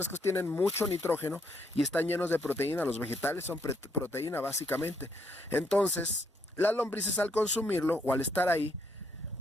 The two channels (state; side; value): normal; both; correlation 0.74